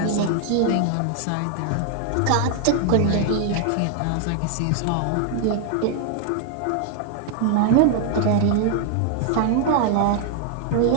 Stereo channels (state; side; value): different; both; correlation 0.00